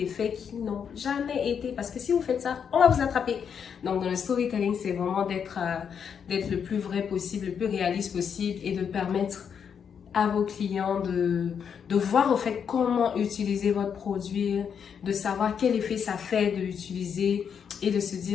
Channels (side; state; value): right; quieter; 7.3 dB